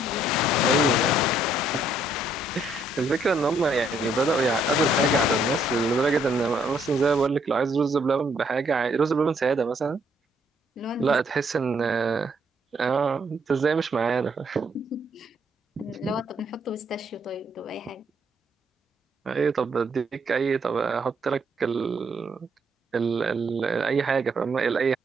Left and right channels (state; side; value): normal; both; correlation 0.69